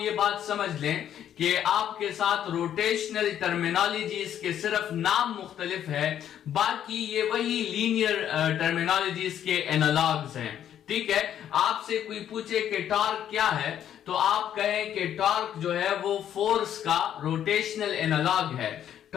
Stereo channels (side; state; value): right; quieter; 10.2 dB